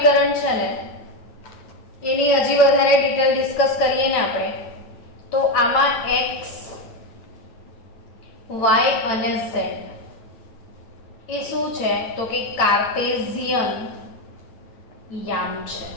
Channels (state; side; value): late; right; 8.9 ms